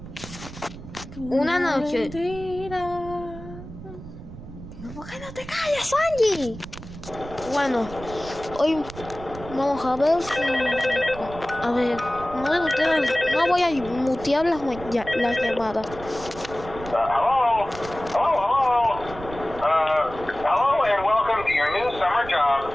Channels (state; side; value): noise; right; rumble, 14 dB below the sound